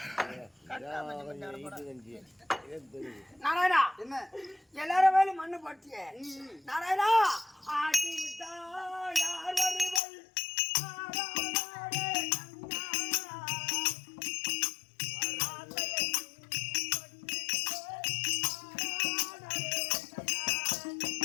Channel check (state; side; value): drops out; right; at 10.0 s